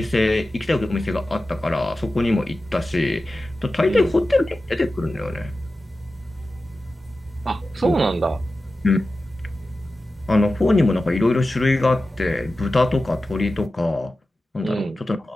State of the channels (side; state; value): both; normal; correlation 0.94